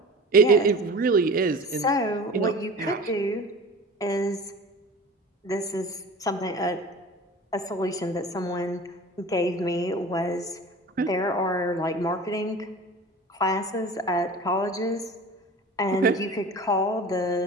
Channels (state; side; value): normal; both; correlation 0.38